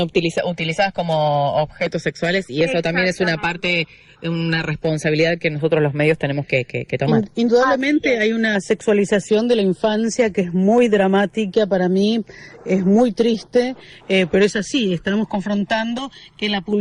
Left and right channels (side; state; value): both; identical; correlation 1.00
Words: como objetos sexuales, y eso también es una parte, una responsabilidad que nosotros los medios tenemos que tomar. Indudablemente hay una sexualización de la infancia que es muy dramática para mí, es muy triste, pero es así, estamos confrontando que en las